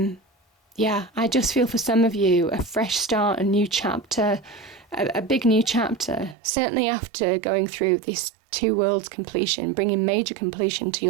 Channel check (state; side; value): drops out; left; at 6.4 s